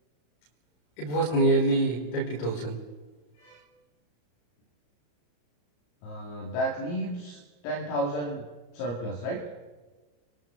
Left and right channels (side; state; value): right; late; 34 ms